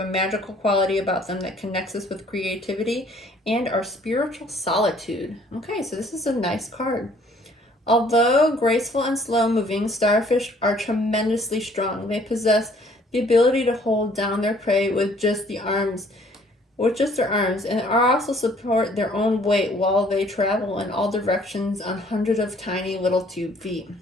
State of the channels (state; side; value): normal; both; correlation 0.59